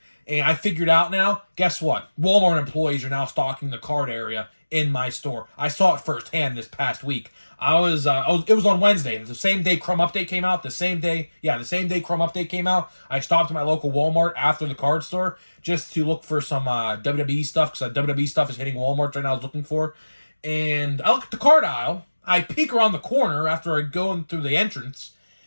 and I figured out now, guess what? Walmart employees are now stocking the card area in my store. I saw it firsthand this past week. It was on Wednesday, the same day Crumb Update came out, the same day Crumb Update came out. I stopped at my local Walmart after the card store just to look for some WWE stuff, because WWE stuff is hitting Walmart right now I was looking for. And I look at the card aisle, I peek around the corner after I go in through the entrance,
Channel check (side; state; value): both; inverted; correlation -1.00